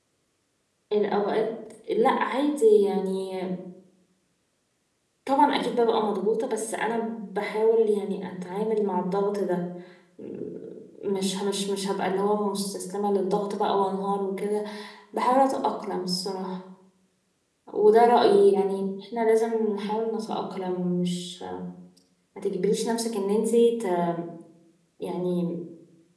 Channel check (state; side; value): identical; both; correlation 1.00